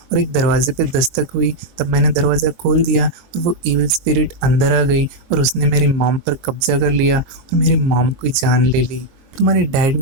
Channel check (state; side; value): late; left; 23 ms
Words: और एक दरवाजे पे दस्तक हुई। तब मैंने दरवाज़ा खोल दिया और वो इविल स्पिरिट अंदर आ गई और उसने मेरी मॉम पर कब्जा कर लिया और मेरी मॉम की जान ले ली। तुम्हारे डैड